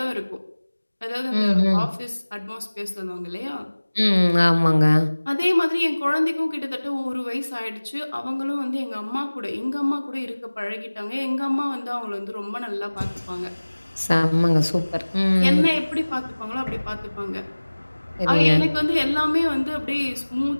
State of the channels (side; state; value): both; inverted; correlation -1.00